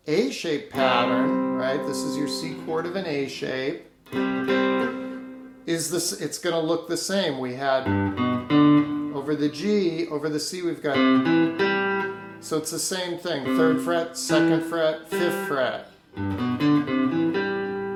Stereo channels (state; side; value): identical; both; correlation 1.00